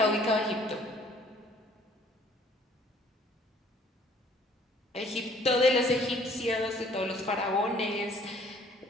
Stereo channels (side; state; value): both; normal; correlation 0.58